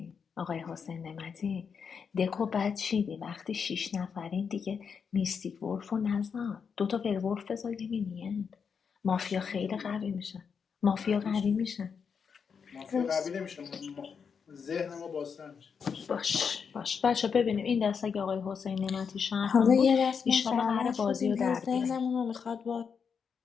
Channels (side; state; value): right; quieter; 6.3 dB